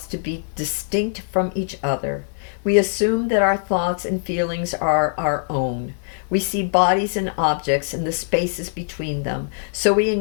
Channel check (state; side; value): silent; right; digital silence